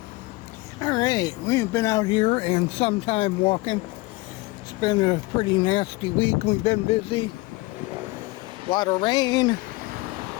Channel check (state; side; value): quieter; right; 22.5 dB